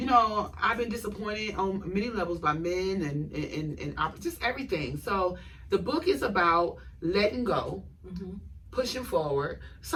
know, I've been disappointed on many levels by men and just everything. So the book is about letting go, pushing forward.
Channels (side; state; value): both; identical; correlation 1.00